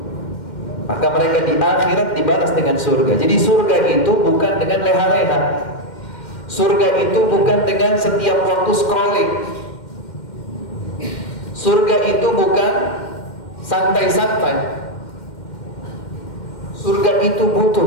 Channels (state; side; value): late; right; 2.1 ms